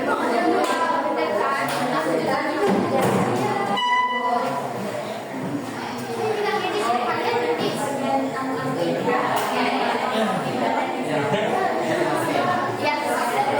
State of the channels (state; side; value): identical; both; correlation 1.00